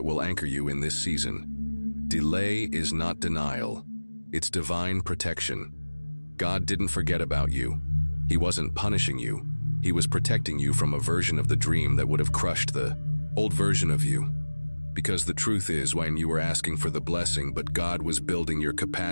will anchor you in this season. Delay is not denial. It's divine protection. God didn't forget about you. He wasn't punishing you. He was protecting you from a version of the dream that would have crushed the old version of you. Because the truth is, when you were asking for the blessing, but God was building your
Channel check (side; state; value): both; inverted; correlation -1.00